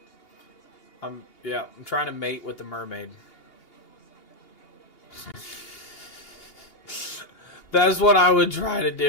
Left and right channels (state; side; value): late; right; 2.8 ms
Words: I'm trying to mate with the mermaid. That's what I would try to